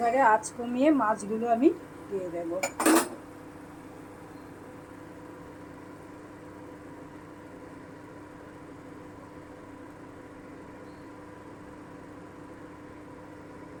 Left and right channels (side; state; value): both; identical; correlation 1.00